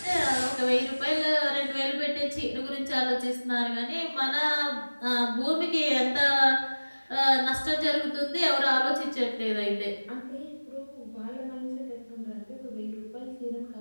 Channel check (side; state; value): both; inverted; correlation -1.00